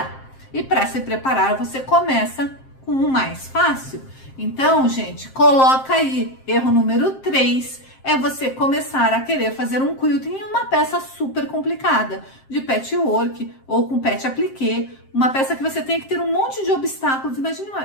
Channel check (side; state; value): right; late; 7.6 ms